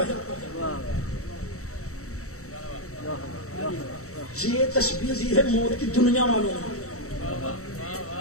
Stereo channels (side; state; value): right; late; 0.64 ms